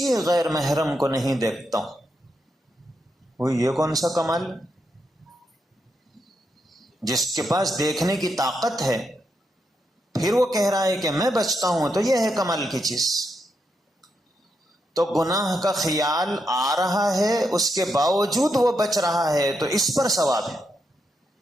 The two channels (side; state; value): both; normal; correlation 0.82